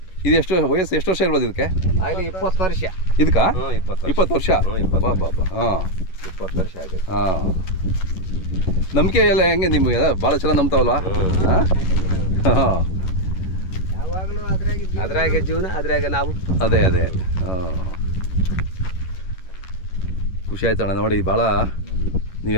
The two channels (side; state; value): right; late; 11 ms